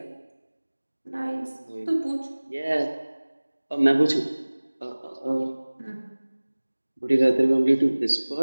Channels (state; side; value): inverted; both; correlation -1.00